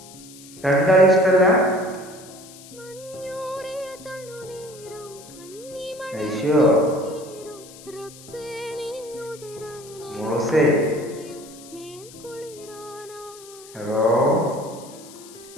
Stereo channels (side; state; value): left; noise; hiss, 19 dB below the sound